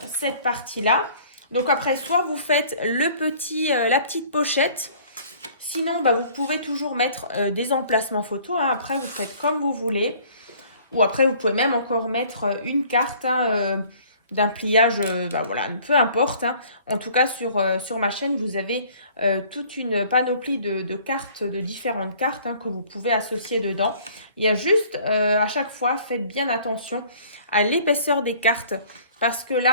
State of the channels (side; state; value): both; inverted; correlation -0.54